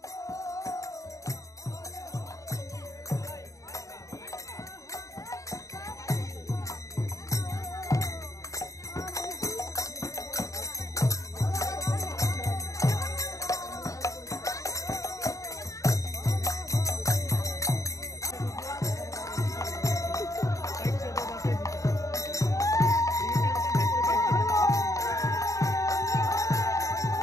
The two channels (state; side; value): late; right; 0.16 ms